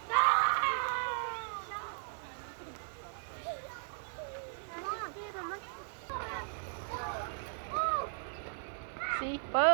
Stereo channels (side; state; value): left; silent; 53 dB below the other